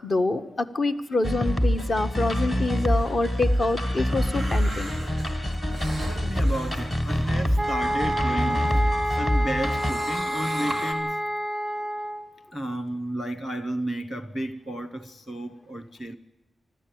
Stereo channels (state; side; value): normal; both; correlation 0.93